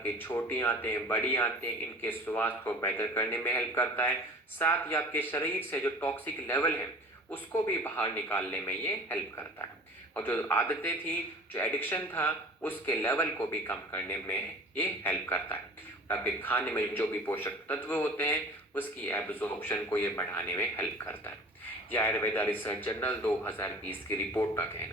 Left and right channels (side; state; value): both; normal; correlation 0.42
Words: कि छोटी आंतें बड़ी आंतें इनके स्वास्थ्य को बेहतर करने में हेल्प करता है, साथ ही आपके शरीर से जो टॉक्सिक लेवल है उसको भी बाहर निकालने में ये हेल्प करता है, और जो आदतें थी, जो एडिक्शन था, उसके लेवल को भी कम करने में ये हेल्प करता है। आपके खाने में जो भी पोषक तत्व होते हैं उसकी एब्जॉर्प्शन को ये बढ़ाने में हेल्प करता है। यह आयुर्वेदा रिसर्च जर्नल 2020 की रिपोर्ट का